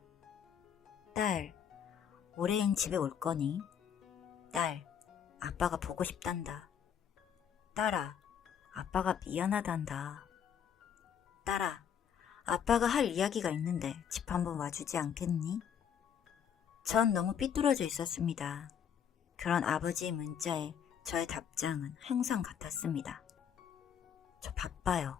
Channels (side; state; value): right; quieter; 8.3 dB